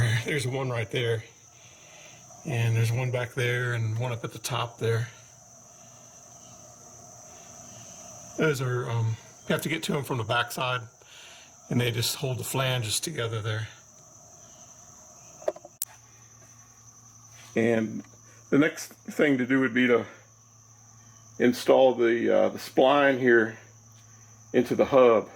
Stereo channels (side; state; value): both; identical; correlation 1.00